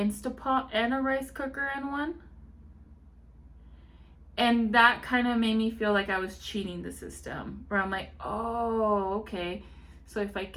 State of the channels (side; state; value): both; identical; correlation 1.00